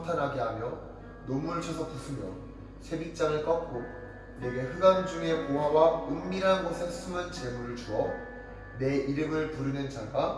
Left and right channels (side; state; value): both; identical; correlation 1.00